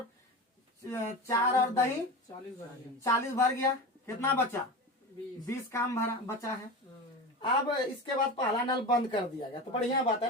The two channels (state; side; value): normal; both; correlation 0.27